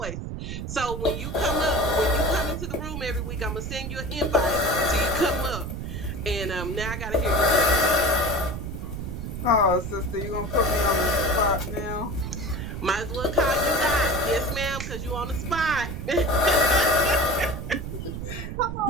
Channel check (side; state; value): right; noise; rumble, 6 dB below the sound